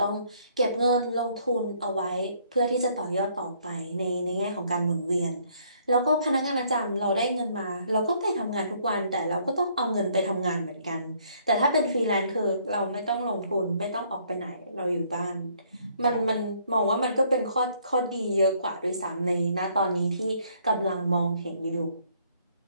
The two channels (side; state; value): both; inverted; correlation -0.65